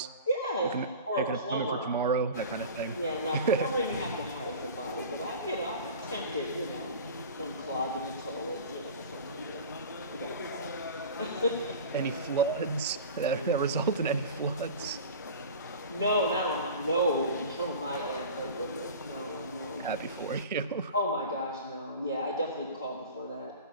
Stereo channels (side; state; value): both; inverted; correlation -0.36